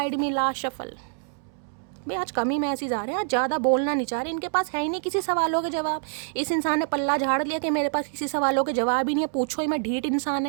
me. Last shuffle. भाई आज कम ही मैसेज आ रहे हैं, आज ज़्यादा बोलना नहीं चाह रहे। इनके पास है ही नहीं किसी सवालों के जवाब। इस इंसान ने पल्ला झाड़ लिया कि मेरे पास किसी सवालों के जवाब ही नहीं है। पूछो ही मैं, ढीठ इंसान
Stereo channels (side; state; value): left; silent; digital silence